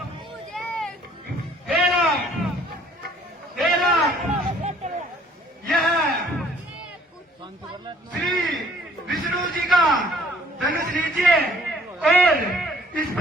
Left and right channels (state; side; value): normal; both; correlation 0.58